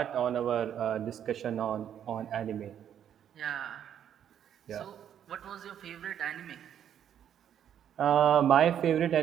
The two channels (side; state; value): left; quieter; 9.5 dB